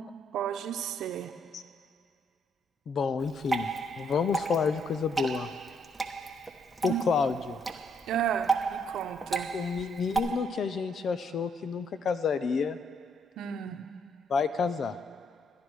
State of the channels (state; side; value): normal; both; correlation 0.72